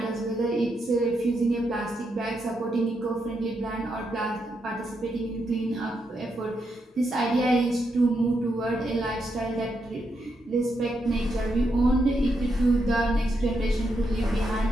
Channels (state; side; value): normal; both; correlation 0.81